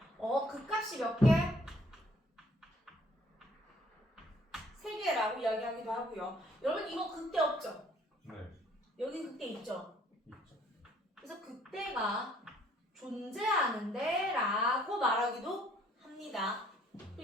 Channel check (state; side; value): normal; both; correlation 0.61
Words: 극값이 몇 개? 3개라고 이야기하기도 하고요. 여러분 이거 극대 없죠? 네, 여기 극대 있죠? 있죠. 그래서 극대가 존재하는데 라고 말하기도 합니다.